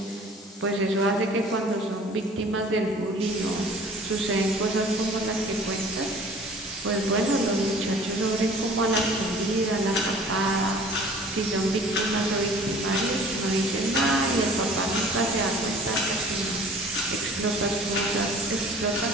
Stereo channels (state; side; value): normal; both; correlation 0.48